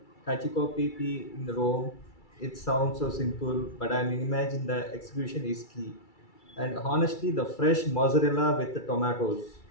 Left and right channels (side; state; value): right; late; 2.3 ms